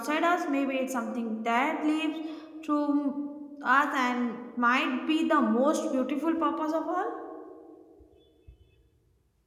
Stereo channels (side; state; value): both; identical; correlation 1.00